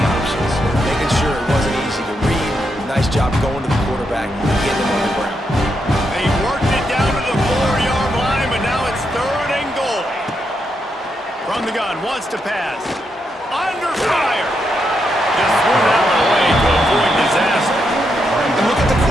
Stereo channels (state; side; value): normal; both; correlation 0.82